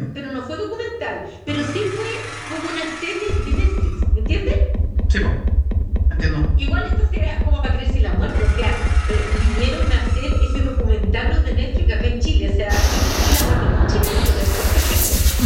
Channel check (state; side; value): identical; both; correlation 1.00